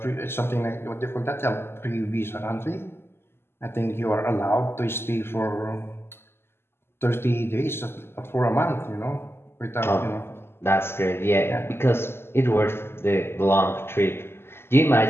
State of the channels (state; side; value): late; right; 0.12 ms